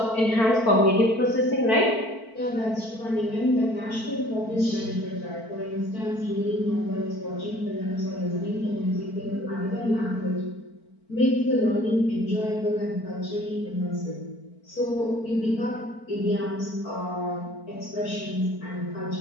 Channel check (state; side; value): late; right; 4.5 ms